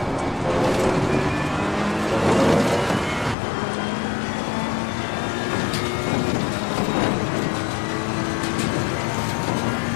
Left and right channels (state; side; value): drops out; right; at 3.4 s